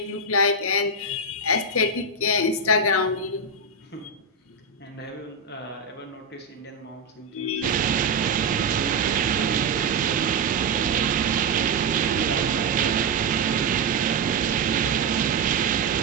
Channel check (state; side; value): quieter; left; 3.5 dB